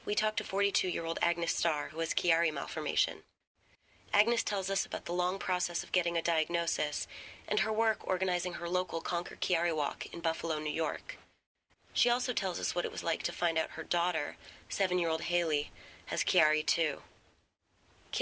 we talked to 42-year-old Agnes Starr, who has Chiari Malformation. Agnes tells us about the long process of getting a diagnosis and her work organizing her local Conquer Chiari walk in Buffalo, New York. She also tells us what it was like to find out her daughter, 7-year-old Hailey, has Chiari too.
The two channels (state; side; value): identical; both; correlation 1.00